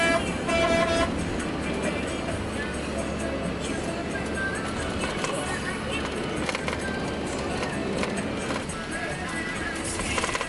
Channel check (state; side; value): identical; both; correlation 1.00